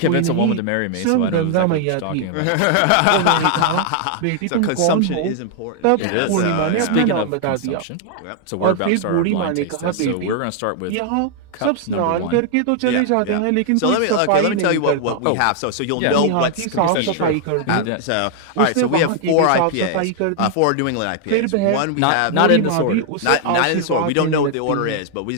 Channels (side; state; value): both; different; correlation 0.00